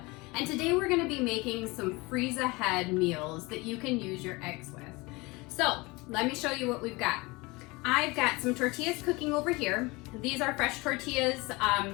and today we're going to be making some freeze ahead meals that you can use your eggs with. So let me show you what we've got. I've got some tortillas cooking over here. These are fresh tortillas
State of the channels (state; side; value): quieter; right; 24.1 dB